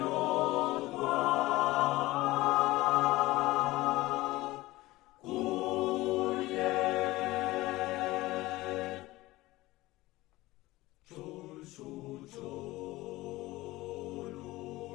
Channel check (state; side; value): quieter; right; 18.8 dB